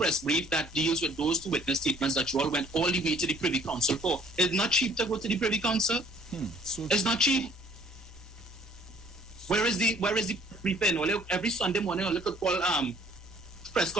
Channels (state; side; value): normal; both; correlation 0.58